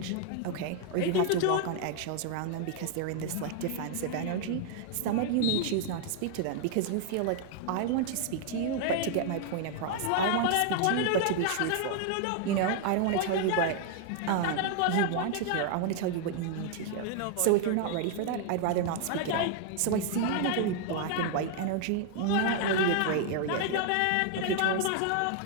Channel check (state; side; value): different; both; correlation 0.00